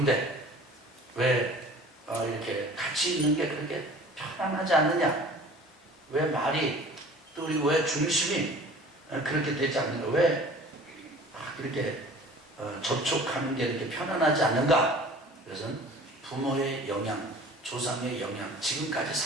왜 이렇게 같이 있는 게 그렇게 편안하지 않느냐? 왜 말이, 또 그리고 왜 중심이 그렇게 되지 않는가? 왜 그렇게 접촉하는 게 이렇게 편안하지 않는가? 그것은 부모의 영향, 조상의 영향, 지금까지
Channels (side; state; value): both; normal; correlation 0.45